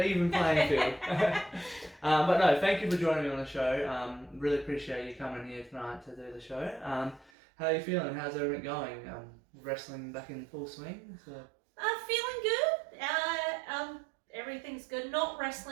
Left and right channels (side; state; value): left; drops out; at 7.3 s